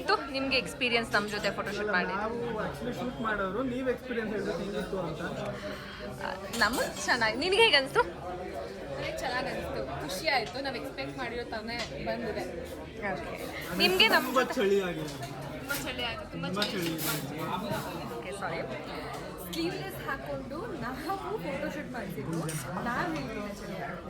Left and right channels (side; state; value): both; identical; correlation 1.00